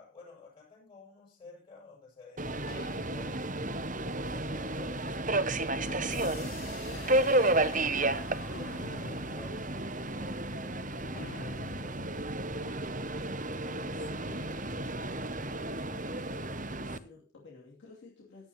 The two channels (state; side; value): normal; both; correlation 0.13